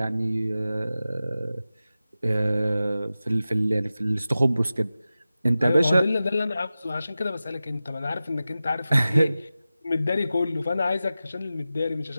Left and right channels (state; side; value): inverted; both; correlation -0.94